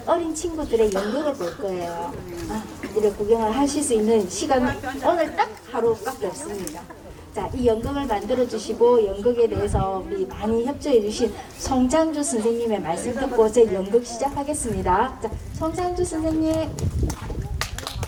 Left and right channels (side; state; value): both; identical; correlation 1.00